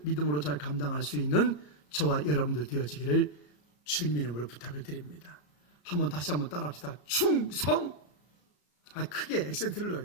믿음으로 잘 감당할 수 있는 저와 여러분들 되어지기를 주님의 이름으로 부탁을 드립니다. 다시 한번 따라합시다. 충성. 크게 액센트를 넣어야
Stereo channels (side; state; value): right; late; 34 ms